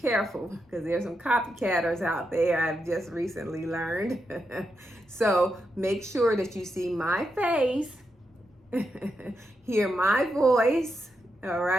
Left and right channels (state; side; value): normal; both; correlation 0.85